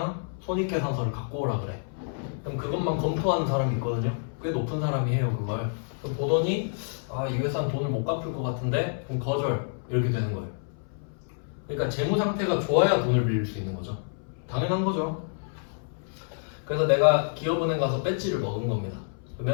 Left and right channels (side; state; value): right; silent; 59 dB below the other